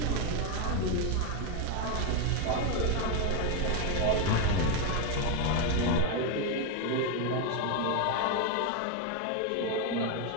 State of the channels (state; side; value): different; both; correlation 0.02